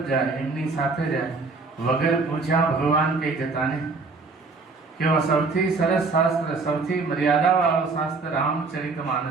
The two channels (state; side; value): quieter; left; 4.0 dB